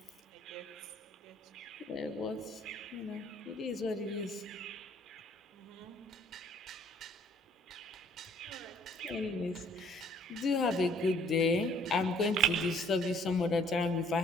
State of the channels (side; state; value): both; normal; correlation 0.60